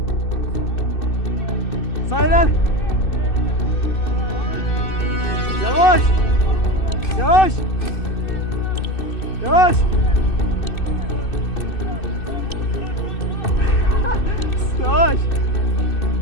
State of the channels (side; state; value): right; late; 2.6 ms